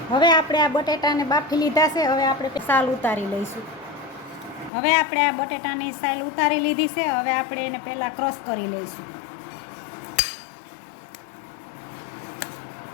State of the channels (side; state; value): right; drops out; at 4.7 s